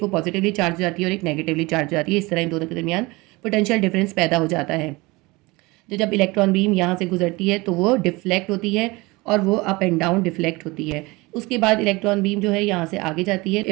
वो पॉजिटिवली चार्ज हो जाती है और एक नेगेटिवली चार्ज हो जाती है। इस तरह इन दोनों के दरमियान पोटेंशियल डिफरेंस पैदा हो जाता है। तो जब इलेक्ट्रॉन बीम यहाँ से गुजरती है तो वो डिफ्लेक्ट होती है और वो अप एंड डाउन डिफ्लेक्ट होती है। उसके बाद इलेक्ट्रॉन बीम जो है यहाँ से आगे जाती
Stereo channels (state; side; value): quieter; left; 23.2 dB